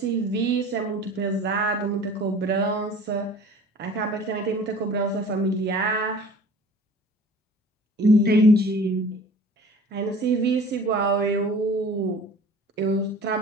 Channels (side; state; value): both; normal; correlation 0.45